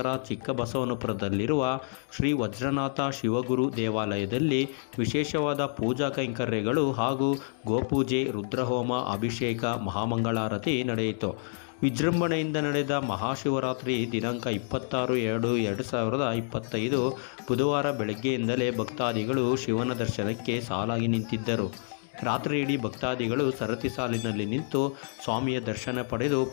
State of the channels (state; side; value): silent; right; 59 dB below the other